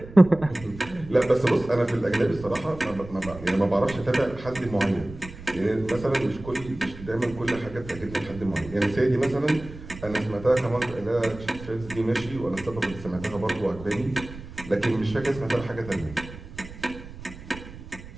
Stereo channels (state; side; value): noise; right; rumble, 15 dB below the sound